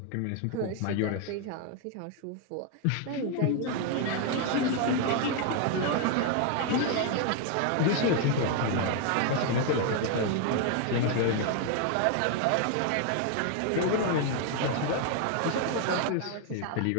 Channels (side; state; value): both; different; correlation 0.01